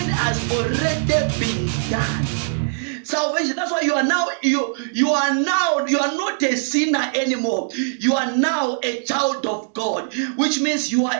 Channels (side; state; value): left; silent; digital silence